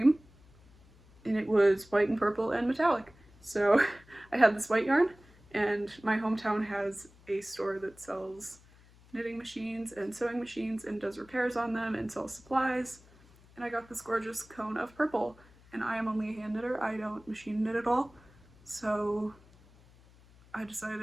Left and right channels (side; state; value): left; noise; hum, 26 dB below the sound